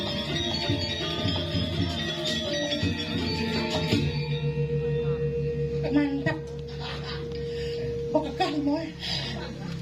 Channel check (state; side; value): identical; both; correlation 1.00